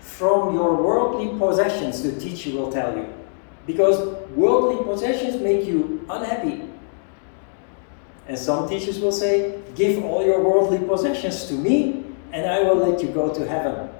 from your worldly possessions, the teacher will tell you. Because worldly possessions make you unhappy. And some teachers will say, give all your worldly possessions to me and I will let you go to heaven.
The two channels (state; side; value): silent; right; digital silence